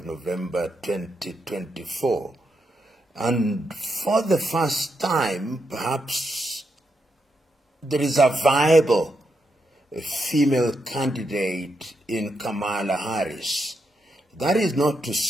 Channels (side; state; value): both; normal; correlation 0.83